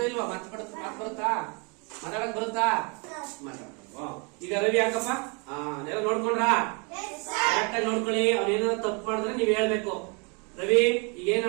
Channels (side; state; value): left; quieter; 33.3 dB